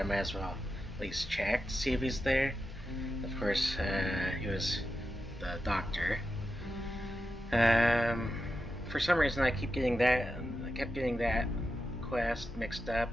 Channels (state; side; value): normal; both; correlation 0.89